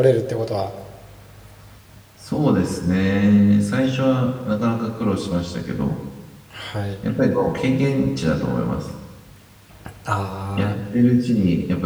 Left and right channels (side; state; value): both; identical; correlation 1.00